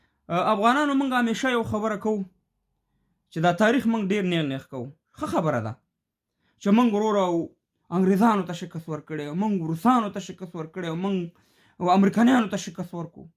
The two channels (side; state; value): both; identical; correlation 1.00